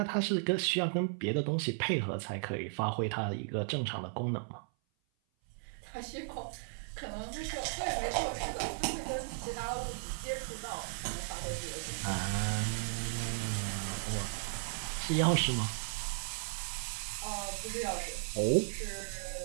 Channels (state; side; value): silent; left; 54 dB below the other